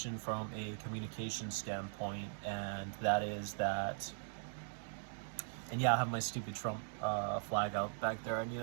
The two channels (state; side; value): silent; left; digital silence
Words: from a communication standpoint, and that is that. And yeah, I have my stupid Trump flag out back there. I need